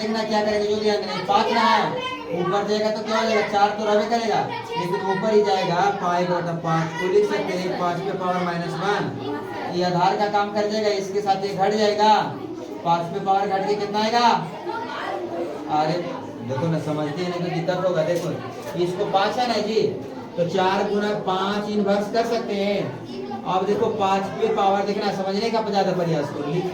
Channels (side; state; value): both; identical; correlation 1.00